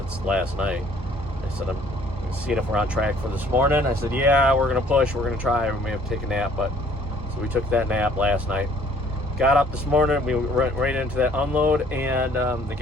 last night. I said, I'm seeing if we're on track for this morning. I said, yeah, we're going to push. We're going to try. We may have to take a nap. But so we took that nap last night. Got up this morning. We went right into that unload. And the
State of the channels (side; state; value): both; normal; correlation 0.58